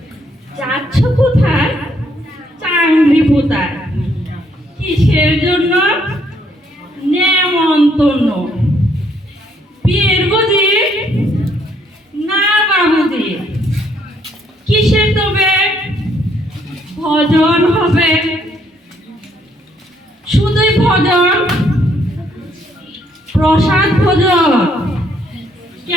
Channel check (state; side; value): normal; both; correlation 0.69